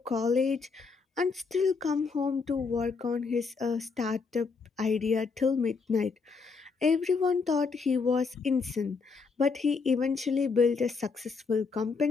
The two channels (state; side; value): quieter; right; 4.8 dB